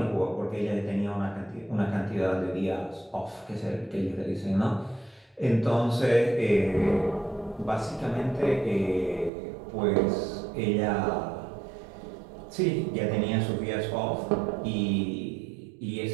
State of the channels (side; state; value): left; drops out; at 9.3 s